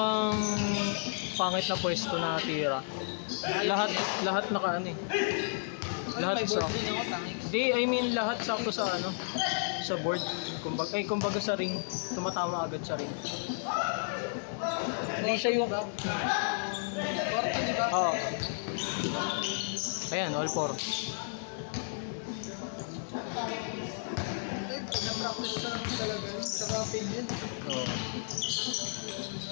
pangit na pwesto na tira. Lahat naka ano eh. Ano, may board din ako, tangik. Hindi, I mean lahat sakto sa ano, sa board. Kumbaga sa ring, tumatama agad sa ring. Hindi siya yung... 40, di ba? Oo. Ayan, all four. Eh, na-practice ko naman talaga yun. Tsaka feel yun. Oo.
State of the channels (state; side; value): silent; right; 56 dB below the other